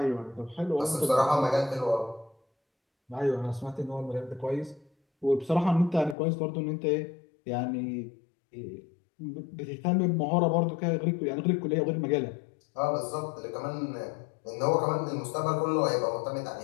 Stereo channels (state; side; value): drops out; right; at 6.2 s